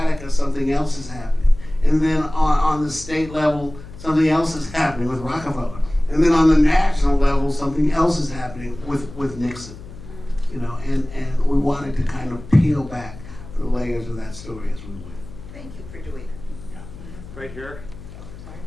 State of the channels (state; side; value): noise; left; hum, 15 dB below the sound